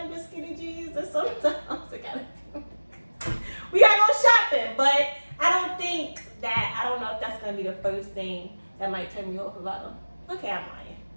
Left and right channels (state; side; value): inverted; both; correlation -1.00